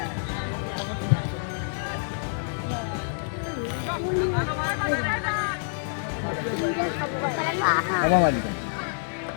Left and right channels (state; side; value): silent; right; 60 dB below the other